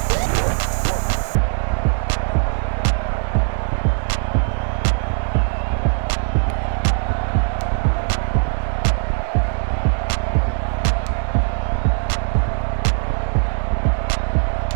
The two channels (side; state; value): left; silent; 57 dB below the other